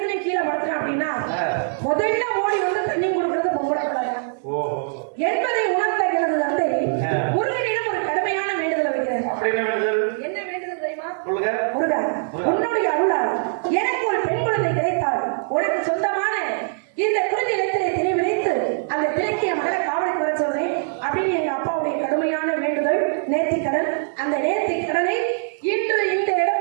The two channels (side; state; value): left; silent; digital silence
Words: கீழே படுத்துறேன் அப்படின்னா முதல்ல ஓடி வந்து தண்ணி கொடுக்கறது பொம்பளை என்பதை உணர்ந்த எனது தந்தை முருகனிடம் ஒரு கடுமையான வேண்டுதலை வைக்கிறார். என்ன வேண்டுதல் தெரியுமா? முருகா, உன்னுடைய அருளால் எனக்கு ஒரு பெண் குழந்தை கிடைத்தால் உனக்கு சொந்தமான இந்த குறிஞ்சி நிலத்திலே திரை விதைத்து அந்த திரைக்கிய மகளை காவலுக்கு வர சொல்றேன் அப்படின்னு எங்க அப்பாவுடைய கடுமையான வேண்டுதல், நேர்த்திக்கடன். அந்த நேர்த்திக்கடனை இன்று இந்த